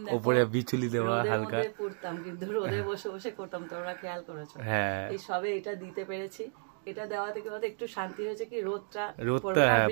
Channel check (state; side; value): silent; left; digital silence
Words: উপরে বিচুলি দেওয়া হালকা পড়তাম, কিন্তু রোদে বসে বসে করতাম, তোমরা খেয়াল করেছো? হ্যাঁ, এই সবে এটা দিতে পেরেছি। এটা দেওয়া থেকে একটু শান্তি হয়েছে, কি রোদটা